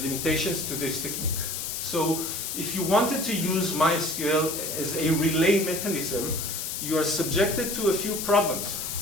limitations to this technique. So if you wanted to use MySQL as a relay mechanism, you are subjected to a few problems.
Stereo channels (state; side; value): noise; left; hiss, 4 dB below the sound